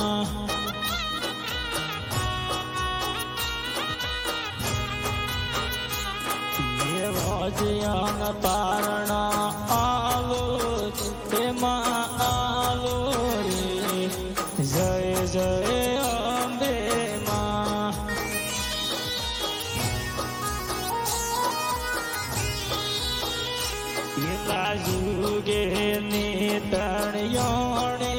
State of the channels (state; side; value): identical; both; correlation 1.00